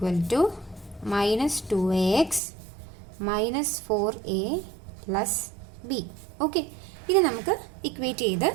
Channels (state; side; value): drops out; left; at 2.4 s